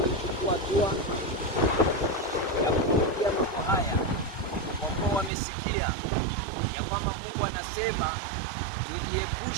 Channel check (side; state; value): left; drops out; at 5.3 s